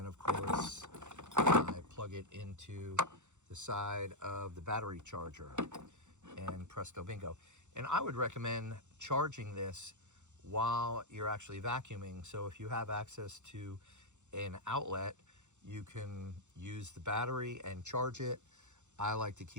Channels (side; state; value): left; late; 0.84 ms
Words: of course, I plug it into the side of the battery charger, and presto bingo. And I would recommend charging this while you're actually vacuuming. So if you have access to an outlet, you can use the battery and charge it. I like to